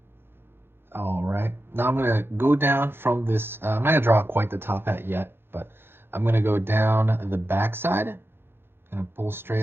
All right, now I'm gonna go down from this, I'm not gonna draw quite the top hat yet, but I'm gonna go down the back side. Gonna pull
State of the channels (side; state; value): left; late; 0.11 ms